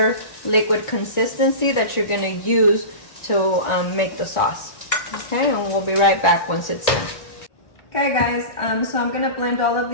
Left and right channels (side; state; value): right; late; 1.9 ms